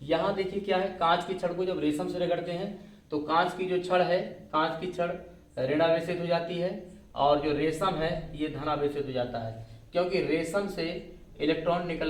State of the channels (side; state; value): both; identical; correlation 1.00